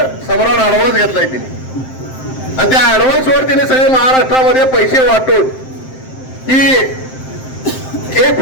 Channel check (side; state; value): right; late; 7.7 ms